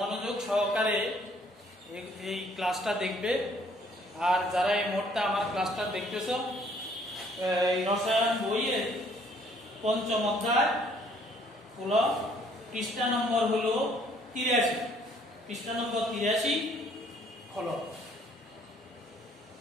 সহকারে এই ক্লাসটা দেখবে। আর যারা এই মুহূর্তে আমার ক্লাসটা দেখতেছ, এই রসায়ন বইয়ের পঞ্চম অধ্যায় হলো পৃষ্ঠা নম্বর হলো 83, পৃষ্ঠা নম্বর 83 হলো।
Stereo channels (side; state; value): both; normal; correlation 0.62